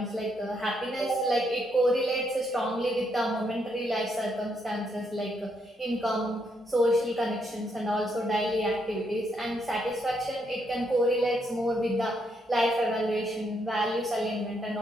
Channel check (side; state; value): both; normal; correlation 0.76